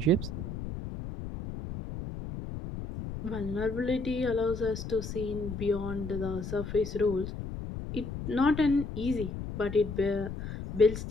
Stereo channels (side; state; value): left; noise; rumble, 7 dB below the sound